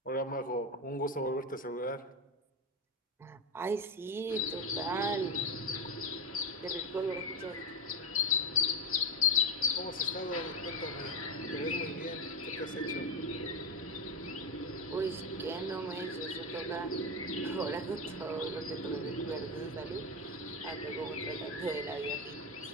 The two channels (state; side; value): normal; both; correlation 0.10